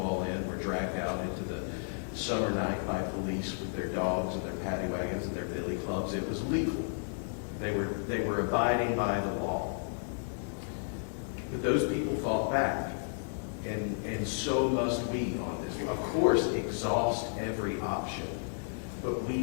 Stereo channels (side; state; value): right; silent; digital silence